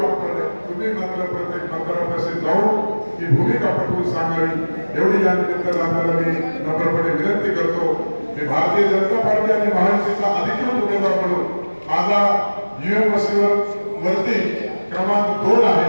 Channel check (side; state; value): both; inverted; correlation -1.00